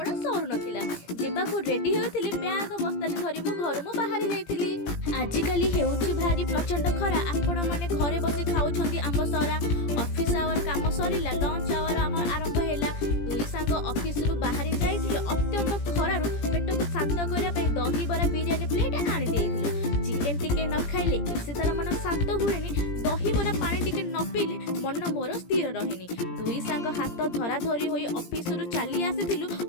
सरू नाला जावाक रेडी होती बैग बस्तानी धरी मु घर मु बाहरी जाइली। आजिकली हेउछि भारी प्रचंड खरा आपण माने घरे बसी खाउछंती आंब सरा ऑफिस आवर काम सरीला लंच आवर आम आरंभ हैला दुई सांग ऑफिस रु बाहरी जाइथिले अत्यंत खरारु पेट को शांत करिया पे दही बरा बिरयानी प्लेट आनी देइथिलु चिकन टिके न खाइले इसे तार मन शांत हुएनी दही बरा पानी टिके न पीले मन मोर स्थिर रहेनी दुई सांग हाथ धरा धरी होई ऑफिस रु चली आसीथिलु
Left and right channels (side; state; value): right; late; 17 ms